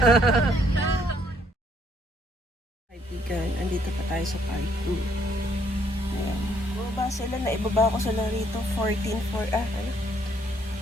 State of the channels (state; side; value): normal; both; correlation 0.68